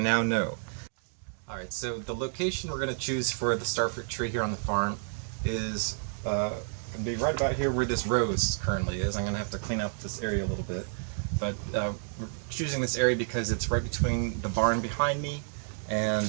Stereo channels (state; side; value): silent; left; digital silence